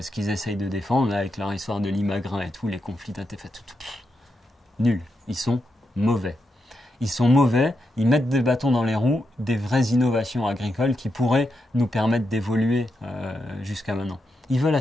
qu'ils essayent de défendre, là, avec leur histoire de l'imagrin et tout, les conflits d'intérêts, nuls, ils sont mauvais. Ils sont mauvais, ils mettent des bâtons dans les roues des vraies innovations agricoles qui pourraient nous permettre d'évoluer jusqu'à maintenant. Ils veulent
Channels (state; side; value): normal; both; correlation 0.85